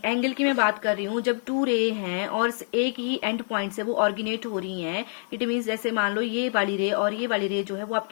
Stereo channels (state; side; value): silent; right; digital silence